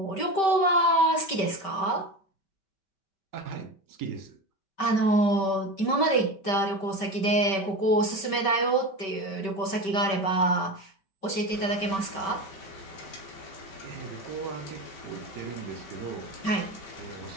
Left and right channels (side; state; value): right; late; 5.2 ms